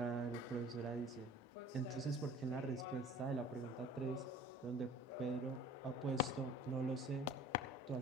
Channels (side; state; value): both; normal; correlation 0.47